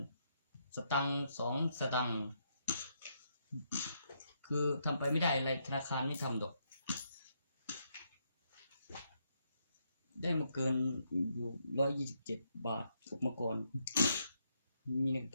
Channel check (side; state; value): both; inverted; correlation -0.77